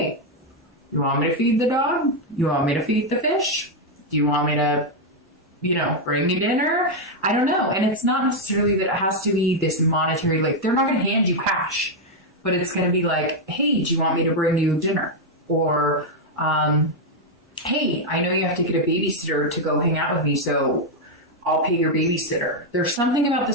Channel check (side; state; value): both; normal; correlation 0.01